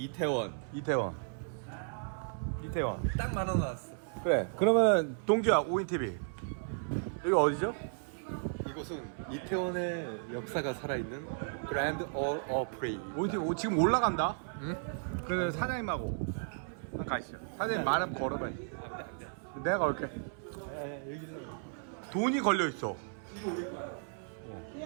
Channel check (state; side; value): silent; left; 55 dB below the other